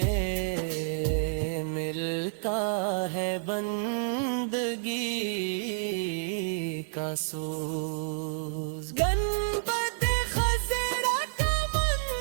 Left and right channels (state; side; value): silent; left; digital silence